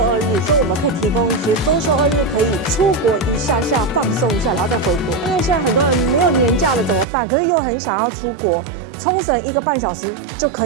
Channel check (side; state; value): left; drops out; at 7.1 s